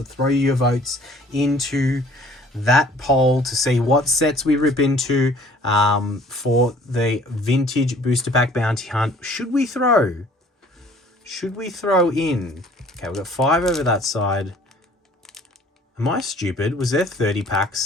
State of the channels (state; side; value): normal; both; correlation 0.54